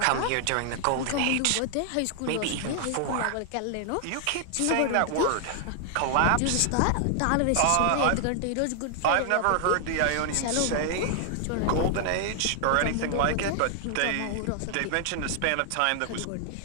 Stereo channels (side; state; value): both; different; correlation 0.00